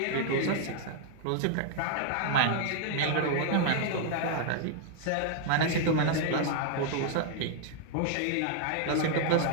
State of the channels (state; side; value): different; both; correlation 0.00